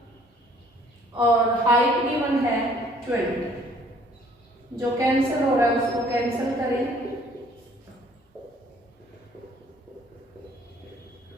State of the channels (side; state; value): both; normal; correlation 0.59